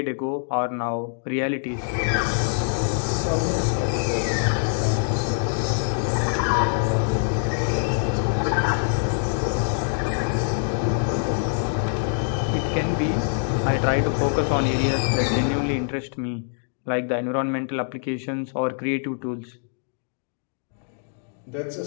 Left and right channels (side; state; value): right; silent; digital silence